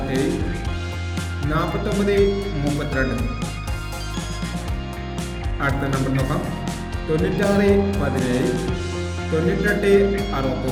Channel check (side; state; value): both; identical; correlation 1.00